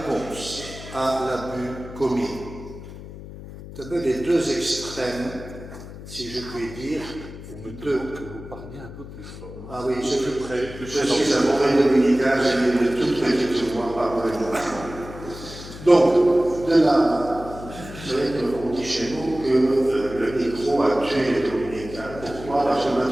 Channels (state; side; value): noise; left; hum, 13 dB below the sound